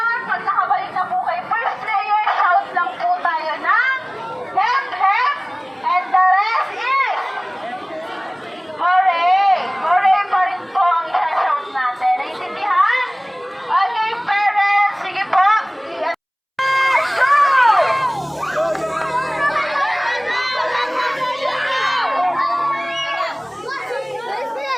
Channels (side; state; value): both; identical; correlation 1.00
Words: pag nakabalik na po kay first player, shout lang po tayo ng hep hep, and the rest is hooray! Hooray pa rin po ang isa-shout natin. Naintindihan? Okay, parents, sige po.